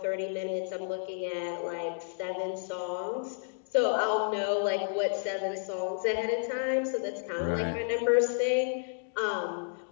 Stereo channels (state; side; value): silent; right; digital silence